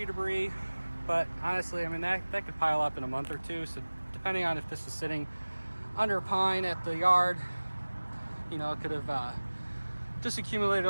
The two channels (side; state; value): both; inverted; correlation -1.00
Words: debris, but honestly, I mean, that could pile up in a month or two. So depending on if this was sitting under a pine at the yard, you know, it could have just accumulated